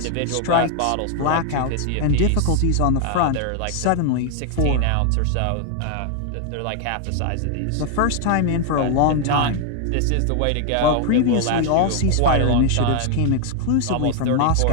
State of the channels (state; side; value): different; both; correlation 0.00